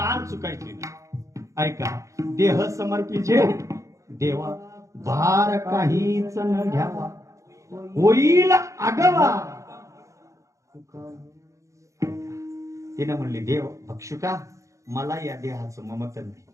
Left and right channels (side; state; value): left; late; 0.15 ms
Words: चुकायची नाही. ऐका, देह समर्पिचे देवा, भार काहीच न घ्यावा, होईल आगवा. तिने म्हणली, देव भक्षुका, मला या देहाचं ममत्व नाही.